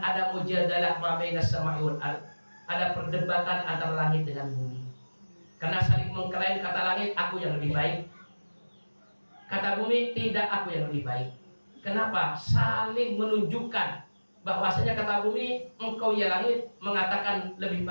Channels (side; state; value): both; inverted; correlation -1.00